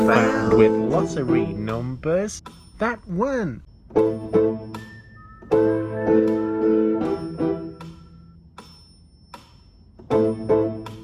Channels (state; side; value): identical; both; correlation 1.00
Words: With lottery numbers that won.